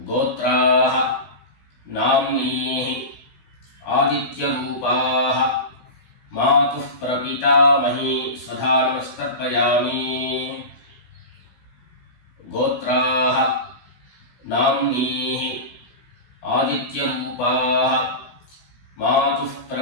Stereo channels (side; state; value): right; late; 16 ms